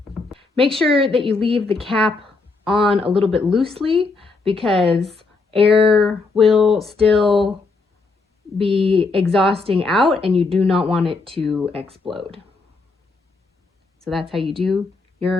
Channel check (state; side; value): quieter; right; 3.9 dB